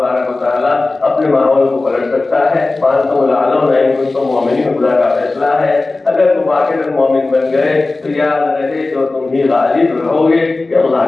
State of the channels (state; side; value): quieter; right; 3.3 dB